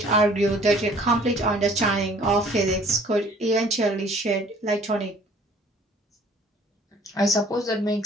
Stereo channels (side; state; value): both; normal; correlation 0.54